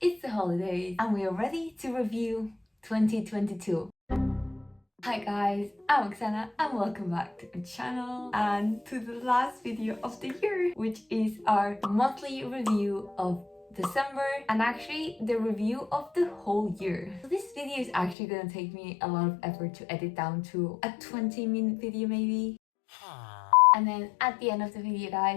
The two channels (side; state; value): right; drops out; at 18.2 s